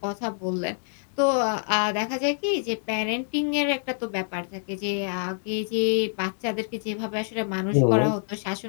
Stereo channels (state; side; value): silent; right; digital silence